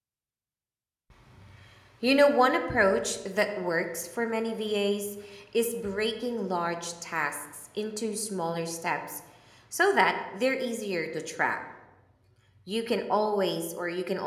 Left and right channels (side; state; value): both; identical; correlation 1.00